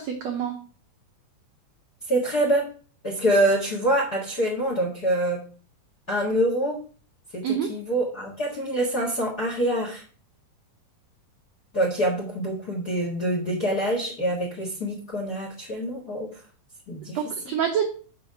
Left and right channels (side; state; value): both; normal; correlation 0.23